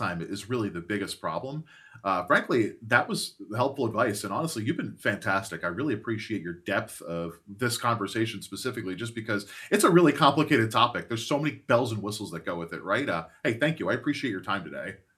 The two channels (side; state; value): both; identical; correlation 1.00